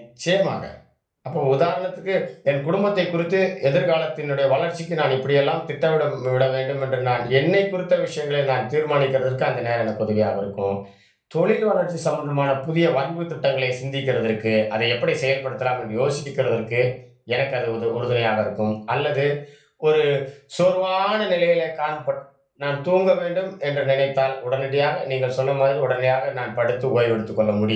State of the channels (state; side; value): identical; both; correlation 1.00